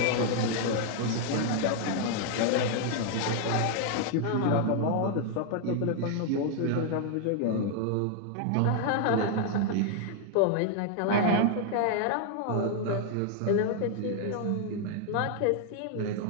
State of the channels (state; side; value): different; both; correlation 0.00